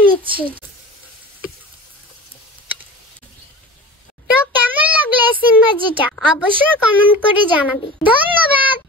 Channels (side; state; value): both; normal; correlation 0.36